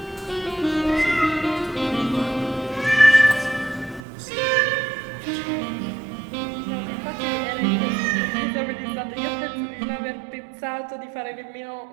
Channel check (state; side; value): drops out; left; at 4.0 s